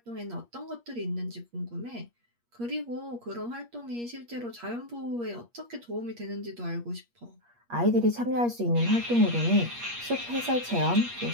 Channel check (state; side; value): late; left; 8.5 ms